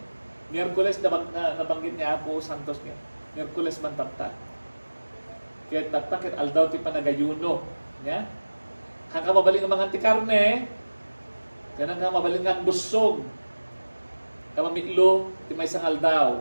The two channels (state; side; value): inverted; both; correlation -1.00